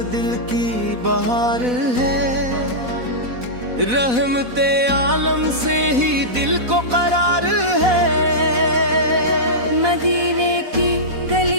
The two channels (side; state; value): left; late; 4.1 ms